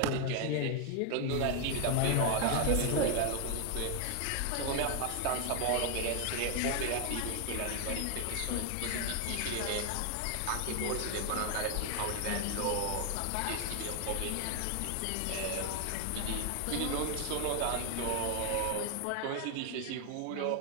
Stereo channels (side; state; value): both; different; correlation 0.00